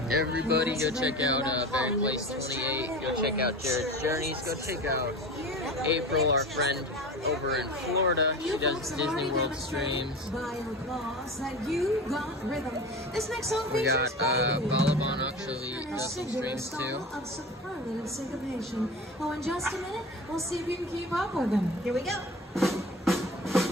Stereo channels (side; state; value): both; normal; correlation 0.33